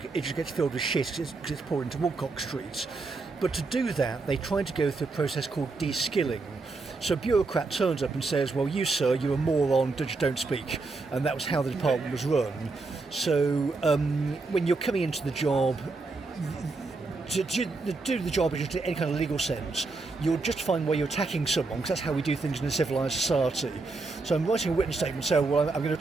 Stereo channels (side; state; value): left; quieter; 3.7 dB